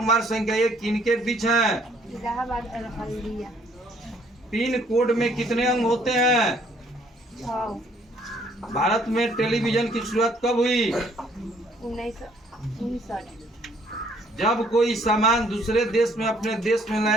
संख्या 1 किनके बीच है? इलाहाबाद और हल्दिया। पिन कोड में कितने अंग होते हैं? 6। भारत में टेलीविजन की शुरुआत कब हुई? 1959। जब कोई सामान दूसरे देश में अपने देश में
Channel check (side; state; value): both; normal; correlation 0.63